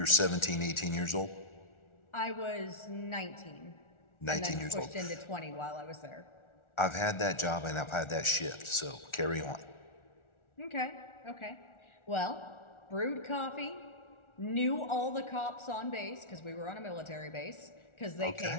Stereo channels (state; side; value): late; right; 1.4 ms